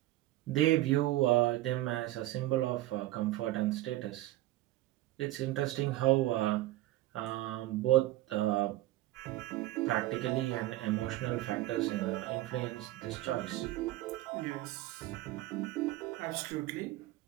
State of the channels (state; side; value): quieter; left; 16.4 dB